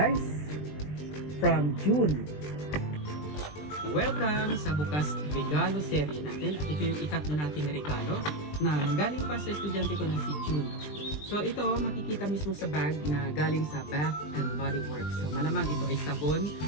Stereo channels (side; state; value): right; late; 20 ms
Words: From June. Welcome sa bukas regalo serie natin. At ito yung ikatlo nating regalo na galing pa sa estudyante ko na si June. So ito makikita mismo sa bag na galing sa Bath and Body Works. So malamang ito ay sabon,